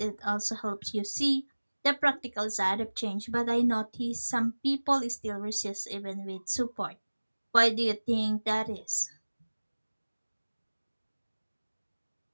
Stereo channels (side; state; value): both; inverted; correlation -1.00